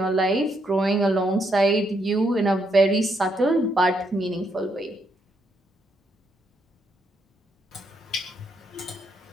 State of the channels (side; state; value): both; normal; correlation 0.76